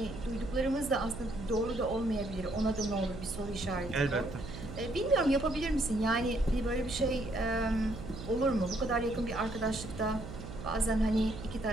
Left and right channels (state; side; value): noise; right; hum, 10 dB below the sound